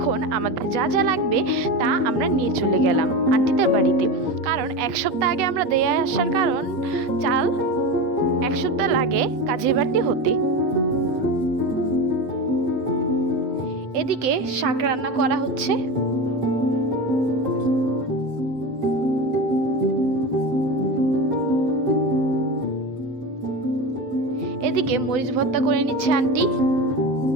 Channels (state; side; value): late; left; 8.0 ms